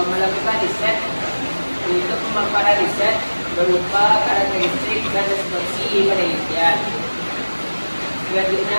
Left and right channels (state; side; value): inverted; both; correlation -1.00